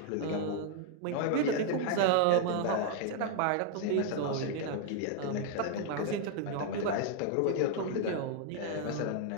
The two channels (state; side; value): different; both; correlation 0.00